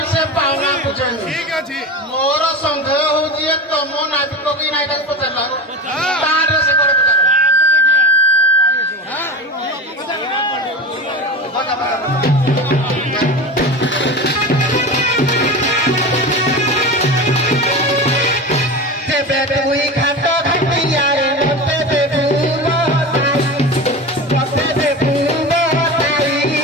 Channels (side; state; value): both; normal; correlation 0.28